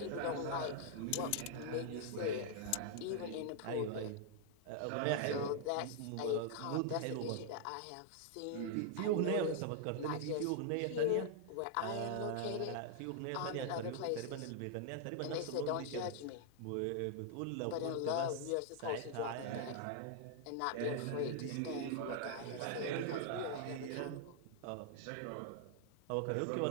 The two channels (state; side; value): different; both; correlation -0.01